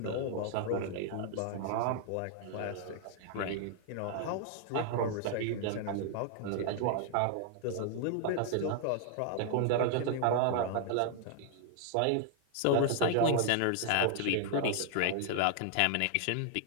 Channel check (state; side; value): different; both; correlation 0.00